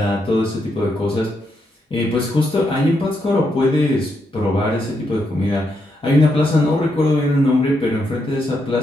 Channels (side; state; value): both; normal; correlation 0.80